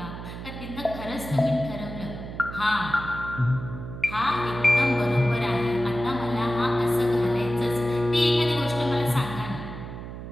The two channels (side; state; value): right; noise; hum, 10 dB below the sound